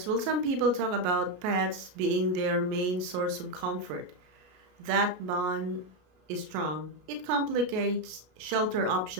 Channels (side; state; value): left; late; 33 ms